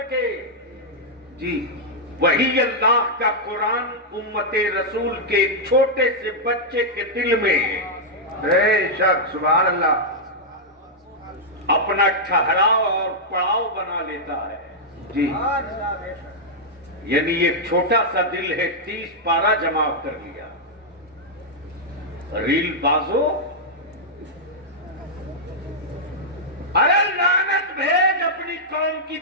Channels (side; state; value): both; normal; correlation -0.06